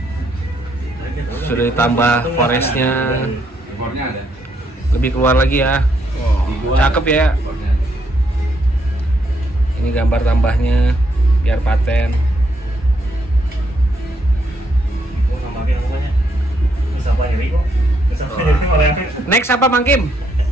Sudah ditambah forestnya, ekornya ada. lebih keluar lagi ya. Cakep ya. Ini gambar tambahnya biar paten. Next apa Mang Kim?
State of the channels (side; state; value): both; normal; correlation 0.74